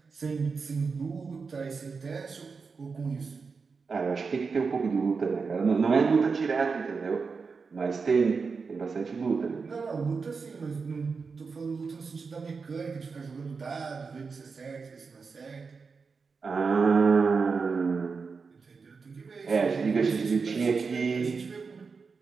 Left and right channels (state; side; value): quieter; left; 5.0 dB